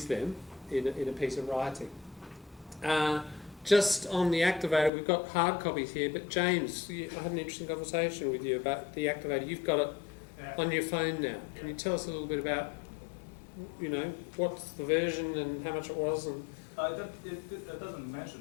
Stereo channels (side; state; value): right; drops out; at 4.9 s